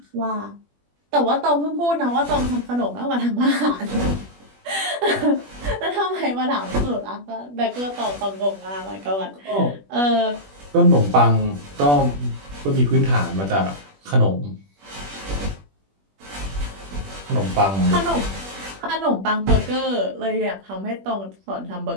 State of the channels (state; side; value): late; left; 21 ms